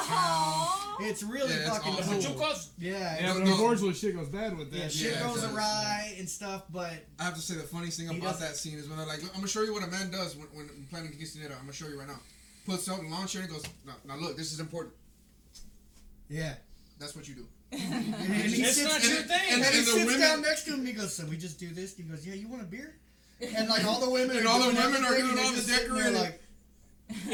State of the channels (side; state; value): both; identical; correlation 1.00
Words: town. It's really fucking cool. Yeah, Yeah, but unfortunately, shit goes bad with that. yeah, shit goes awry and stuff, but I have to say the funniest thing about that scene is when they're like, look, I'm gonna show you what a man does when planning to quinceañera. I'm gonna show you right now. Puts out the lawn chair and goes, now look, this is important. yeah. That's what you do. And he It's sits, not your thing. and he the sits women- down next to him and he goes, so we just do this? And he goes, yeah, you want a beer? And like all the women And all the women are doing doing all the just sitting there decorating. like,